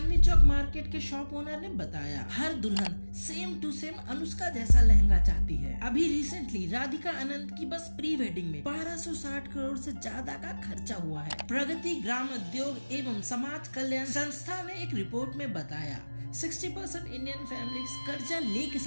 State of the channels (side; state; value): both; inverted; correlation -1.00